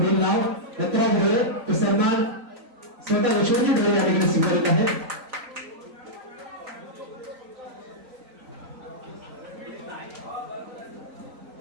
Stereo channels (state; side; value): late; left; 3.9 ms